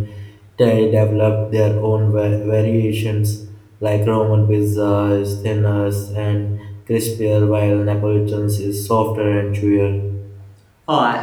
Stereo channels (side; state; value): both; identical; correlation 1.00